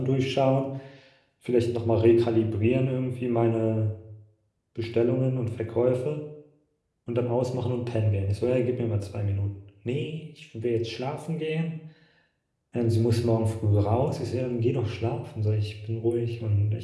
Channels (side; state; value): both; identical; correlation 1.00